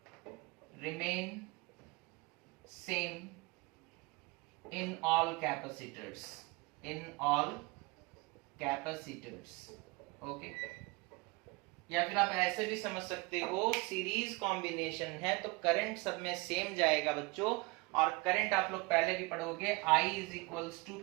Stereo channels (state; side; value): quieter; left; 25.5 dB